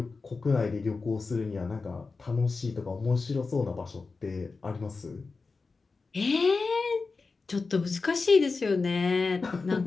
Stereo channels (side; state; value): right; quieter; 4.2 dB